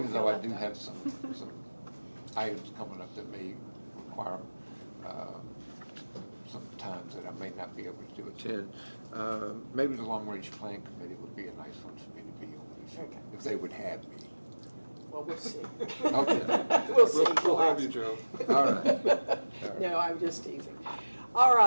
feel though I left do out. have some items coming up that may require some times that I may not be able to attend, maybe the Long Range Plan Committee would be a nice one for me to be on, if they would have me. Well, we'll see. Okay. We'll see. We'll have you, Joe. All right. No, I'm just teasing. All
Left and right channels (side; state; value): both; inverted; correlation -1.00